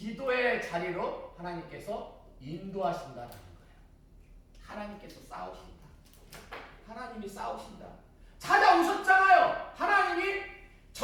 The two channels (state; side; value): identical; both; correlation 1.00